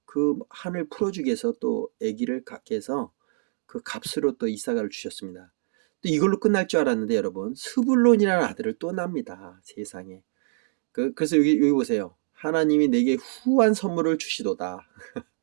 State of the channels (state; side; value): silent; left; digital silence